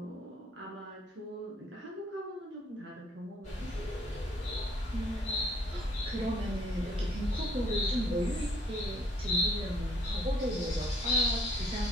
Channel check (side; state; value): both; normal; correlation 0.63